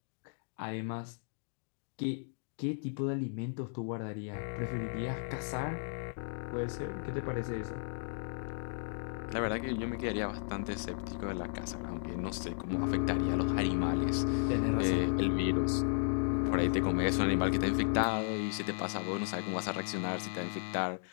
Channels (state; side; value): silent; right; digital silence